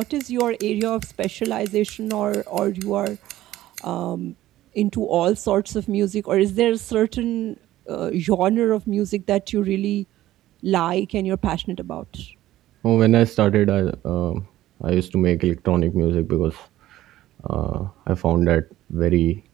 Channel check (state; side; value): quieter; left; 14.7 dB